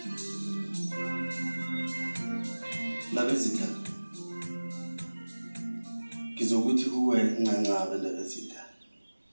Labezitha. Kizokuthi kuwe ncancabe labezitha.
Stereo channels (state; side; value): inverted; both; correlation -1.00